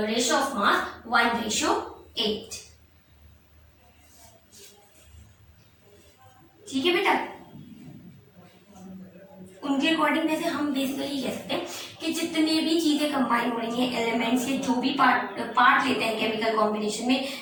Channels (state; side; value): identical; both; correlation 1.00